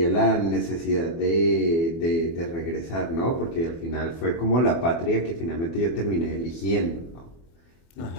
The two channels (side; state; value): right; late; 24 ms